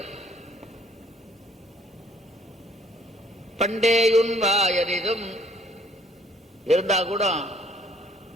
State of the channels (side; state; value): both; normal; correlation 0.62